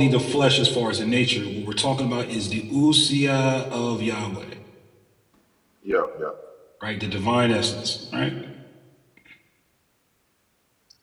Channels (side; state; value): both; identical; correlation 1.00